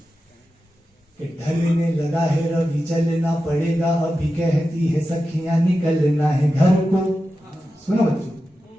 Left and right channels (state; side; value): normal; both; correlation 0.92